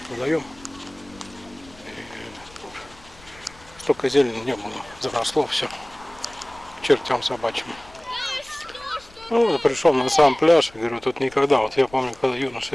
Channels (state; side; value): noise; left; rumble, 24 dB below the sound